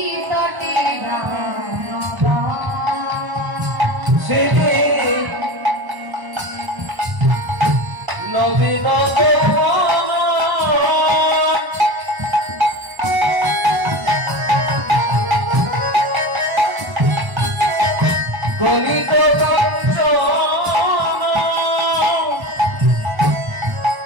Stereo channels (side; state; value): left; late; 1.0 ms